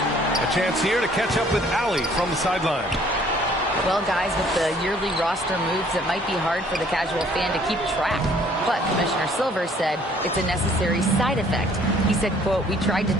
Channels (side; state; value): both; normal; correlation 0.58